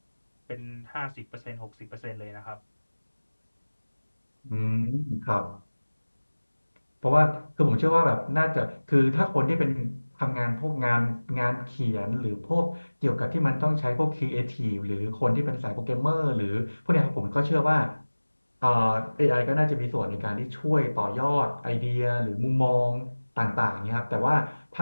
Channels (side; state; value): both; inverted; correlation -1.00